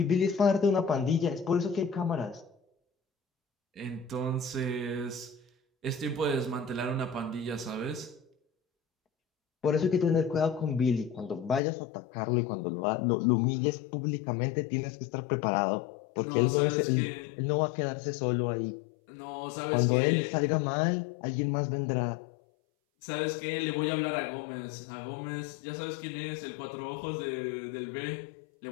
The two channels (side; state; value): right; drops out; at 11.6 s